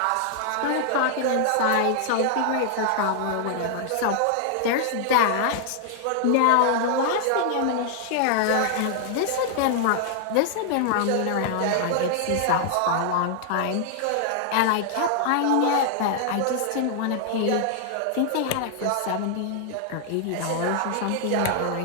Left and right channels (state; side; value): different; both; correlation 0.00